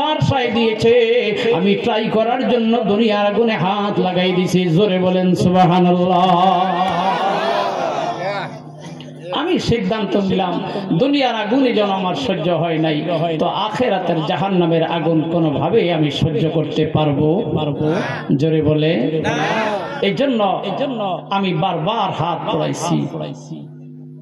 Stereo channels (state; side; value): identical; both; correlation 1.00